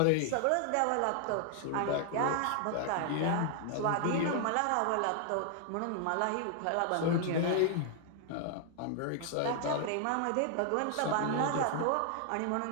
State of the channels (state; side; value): different; both; correlation 0.00